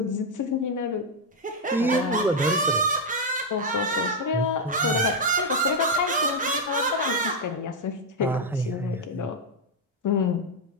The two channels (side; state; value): both; normal; correlation 0.01